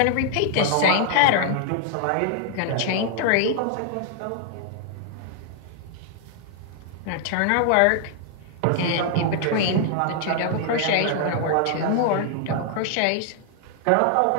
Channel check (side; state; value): both; different; correlation 0.00